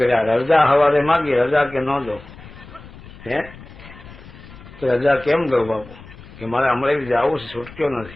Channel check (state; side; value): noise; left; rumble, 18 dB below the sound